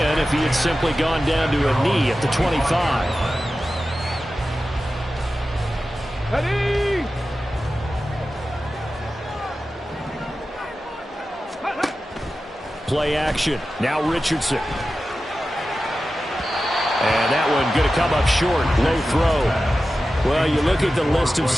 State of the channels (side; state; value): both; normal; correlation 0.93